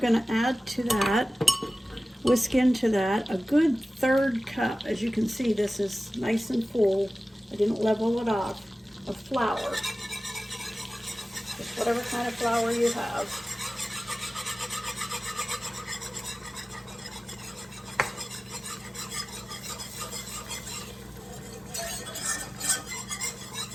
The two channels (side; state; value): both; normal; correlation 0.96